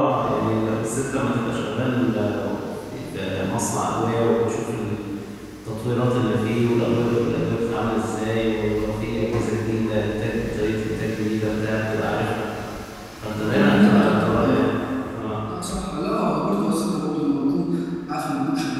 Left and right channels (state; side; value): identical; both; correlation 1.00